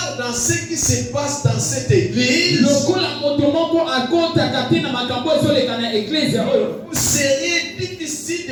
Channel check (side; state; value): both; identical; correlation 1.00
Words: dans ce qui se passe dans cette église, vous seriez difficile